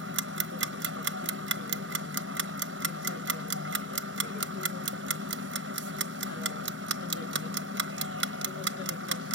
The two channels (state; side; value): normal; both; correlation 0.15